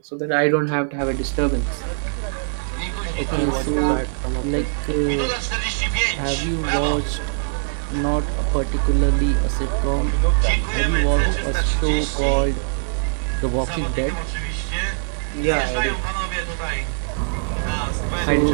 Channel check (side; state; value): left; silent; 64 dB below the other